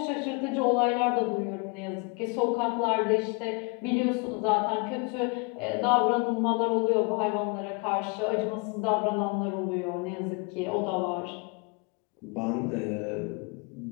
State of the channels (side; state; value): right; quieter; 32.0 dB